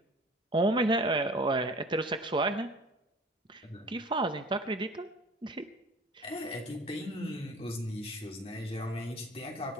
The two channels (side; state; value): both; normal; correlation 0.45